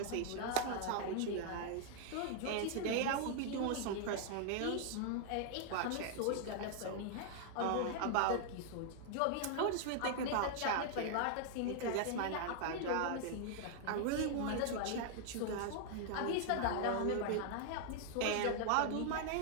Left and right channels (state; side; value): different; both; correlation 0.00